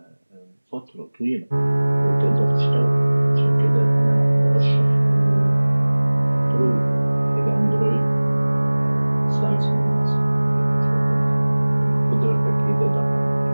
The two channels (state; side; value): inverted; both; correlation -1.00